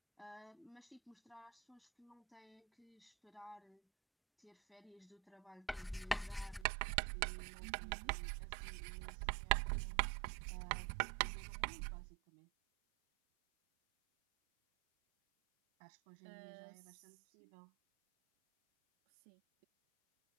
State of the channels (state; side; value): drops out; left; at 6.7 s